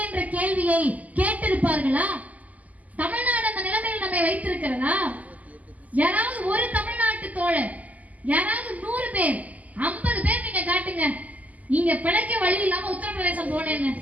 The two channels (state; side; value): late; left; 0.076 ms